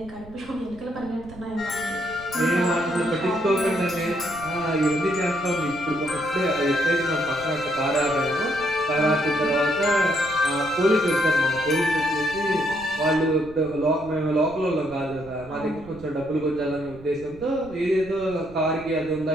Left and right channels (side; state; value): right; noise; rumble, 19 dB below the sound